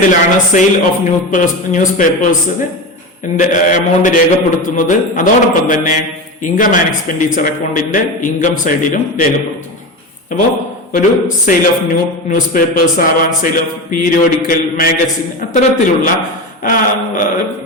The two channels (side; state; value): both; normal; correlation 0.22